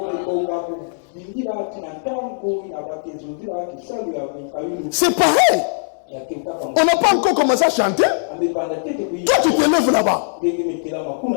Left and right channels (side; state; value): right; silent; digital silence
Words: C'est pareil. On n'a pas encore commencé à chanter. Toi, tu te lèves là-bas.